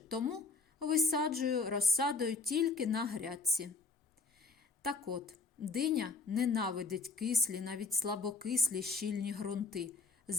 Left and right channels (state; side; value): quieter; right; 4.0 dB